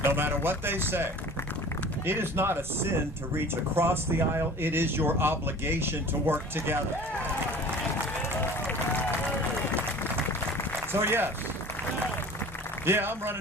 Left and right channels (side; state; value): both; normal; correlation 0.43